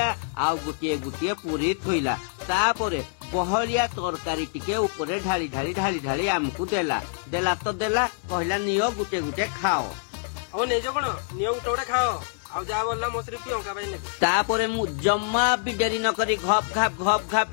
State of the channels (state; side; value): silent; right; digital silence